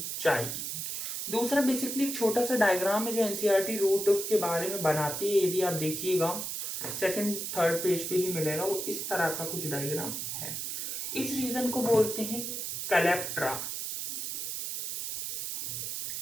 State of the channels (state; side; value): noise; right; hiss, 4 dB below the sound